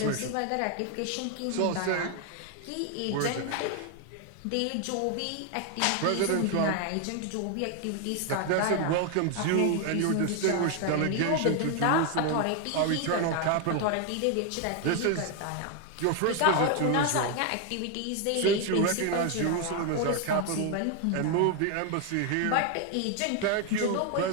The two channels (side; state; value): both; different; correlation 0.01